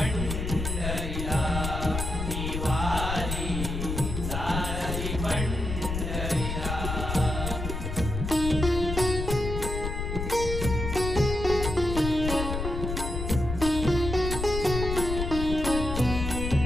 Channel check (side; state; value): left; noise; rumble, 4 dB below the sound